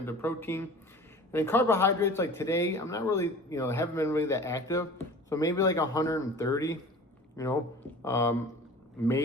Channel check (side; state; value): both; normal; correlation 0.41